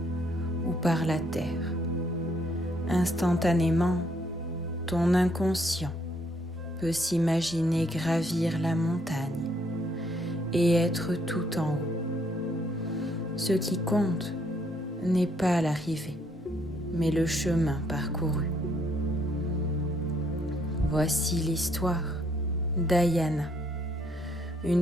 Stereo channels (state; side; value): normal; both; correlation 0.69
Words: ou par la terre. Instantanément, ton inconscient peut s'imaginer gravir la montagne et être tout en haut. Ce qui compte n'est pas l'arrivée, mais le chemin parcouru. Voici l'histoire d'Ayana,